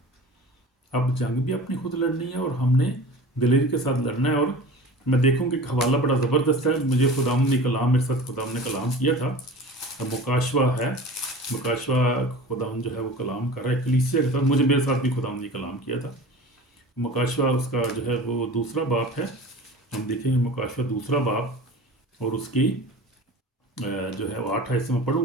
अब जंग भी अपनी खुद लड़नी है और हमने दिलेरी के साथ लड़ना है। और मैं देखूँ कि हवाला बड़ा ज़बरदस्त है, मुझे खुदाम ने कलाम, मेरे साथ खुदाम ने कलाम किया था, मुकाशवा है, मुकाशवा खुदाम जो है वो कलाम कर रहा है कलीसिया के साथ, मुझे मेरे साथ भी खुदाम ने कलाम किया था। मुकाशवा उसका जो है वो दूसरा बाप है, हम देखेंगे मुकाशवा दूसरा बाप, और उसकी जो है वो 8 हिस्से में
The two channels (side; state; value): both; normal; correlation 0.38